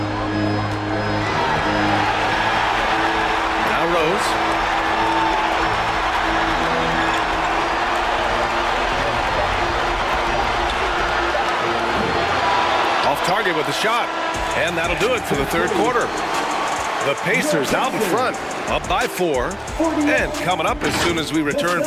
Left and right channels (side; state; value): both; identical; correlation 1.00